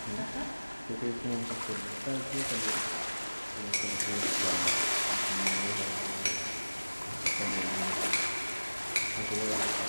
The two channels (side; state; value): both; inverted; correlation -1.00